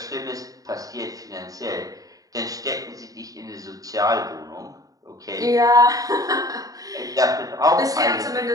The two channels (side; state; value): left; late; 0.17 ms